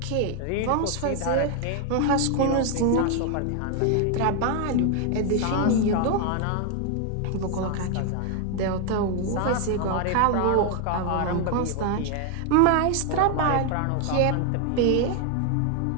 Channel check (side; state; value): both; different; correlation 0.01